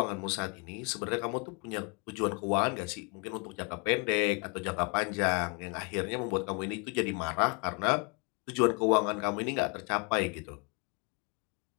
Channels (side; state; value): right; quieter; 32.9 dB